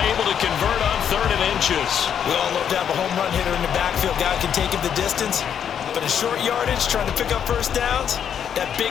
able to convert on 3rd and inches. We all love to have a home run hitter in the backfield. Guy can take it the distance. But in short yardage, trying to pick up first downs, that big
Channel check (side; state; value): right; quieter; 8.5 dB